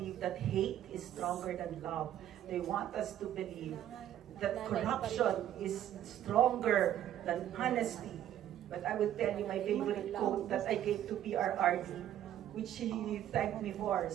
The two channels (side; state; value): left; quieter; 11.6 dB